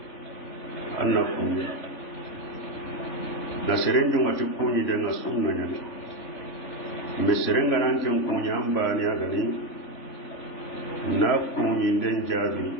anna kunyi na serenjo ngati kunyi denga sunna nyani mbe serenga nanke kunyi ambani agani na kunyi den jabi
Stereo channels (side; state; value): right; late; 3.5 ms